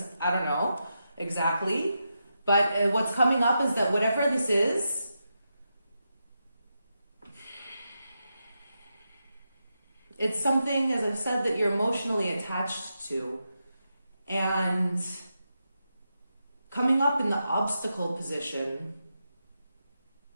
I don't know exactly. But what's coming up is that whatever this is, it's something, as I've said, that you're emotionally attached to. And coming up in the obstacle position,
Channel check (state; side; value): inverted; both; correlation -0.87